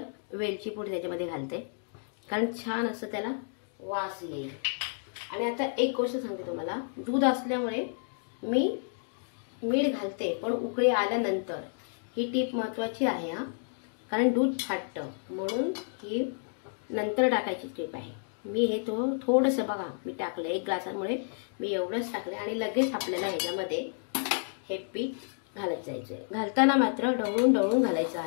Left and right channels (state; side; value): silent; right; digital silence